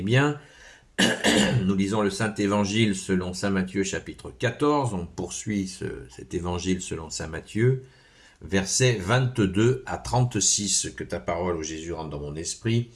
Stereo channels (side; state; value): both; identical; correlation 1.00